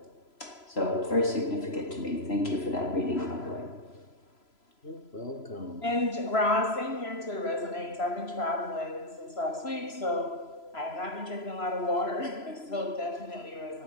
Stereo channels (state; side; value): late; right; 3.0 ms